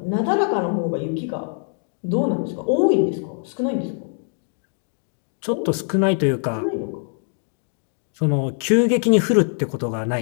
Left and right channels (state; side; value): silent; right; 64 dB below the other